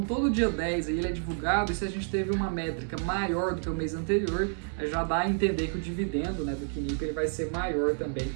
todo dia 10 aí ele é divulgado e se a gente teve uma métrica maior do que o mês anterior, já dá a entender que o dividendo do QNIP ele vai ser maior também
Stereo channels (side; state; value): left; silent; 58 dB below the other